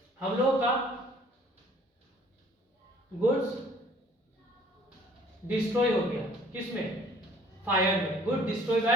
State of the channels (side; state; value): both; normal; correlation 0.55